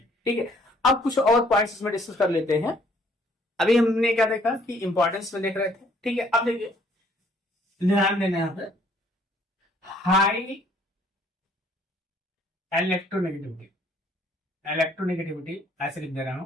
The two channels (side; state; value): both; normal; correlation 0.62